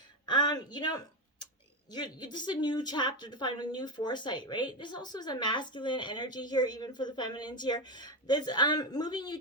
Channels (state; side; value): normal; both; correlation 0.13